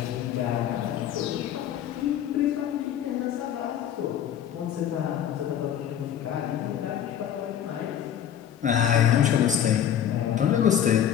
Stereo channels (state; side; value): quieter; right; 9.9 dB